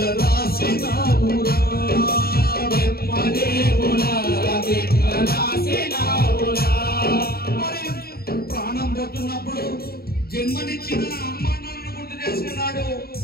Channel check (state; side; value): late; right; 0.45 ms